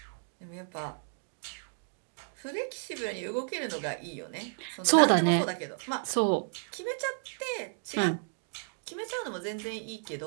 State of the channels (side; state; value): left; silent; 56 dB below the other